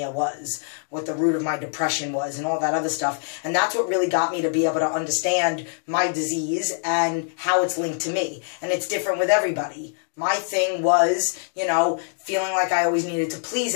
was, what the root of my depression was, and all that other stuff. And that's what really got me to be able to understand my disease and how it's linked to me. And it's different with everybody. My thing was, you know, feeling like I always needed to please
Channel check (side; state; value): right; silent; 63 dB below the other